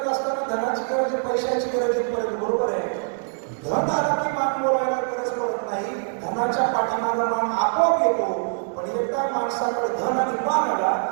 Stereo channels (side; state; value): left; silent; 63 dB below the other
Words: असताना धनाची गरज, पैशाची गरज पडत, बरोबर आहे. धन आला की मान बोलायला गरज पडत नाही, धनाच्या पाठीमागे मान आपोआप येतो. पण एकदा माणसाकडे धन आणि मान आला